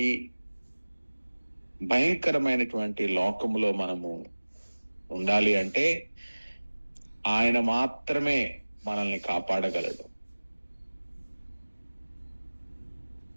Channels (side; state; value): both; inverted; correlation -1.00